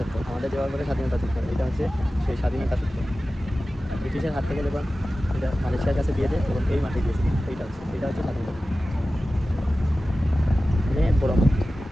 আমাদের যেভাবে বলে স্বাধীনতা চত্বর, এটা হচ্ছে সেই স্বাধীনতা চত্বর। ব্রিটিশের হাত থেকে যখন এটা মালয়েশিয়ার কাছে দিয়ে দেয় তখন এই মাঠে গিয়েছিল। এটা হচ্ছে স্বাধীনতা, অনেক বড় মাঠ।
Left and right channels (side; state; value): both; normal; correlation 0.95